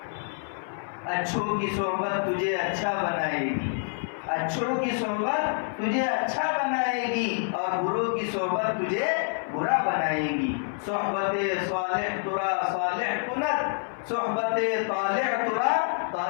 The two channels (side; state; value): right; silent; 56 dB below the other